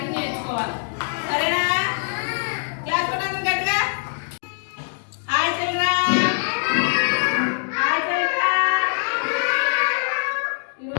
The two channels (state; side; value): silent; right; 63 dB below the other